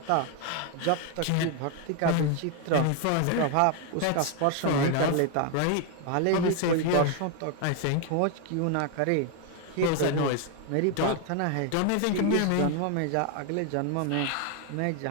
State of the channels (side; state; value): both; different; correlation 0.01